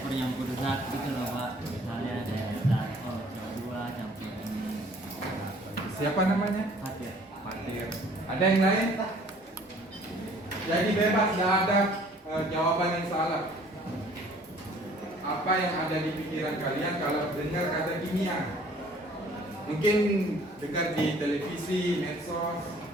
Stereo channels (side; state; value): both; normal; correlation 0.55